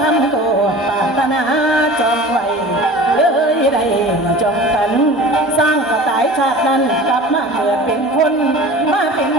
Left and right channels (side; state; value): both; normal; correlation 0.39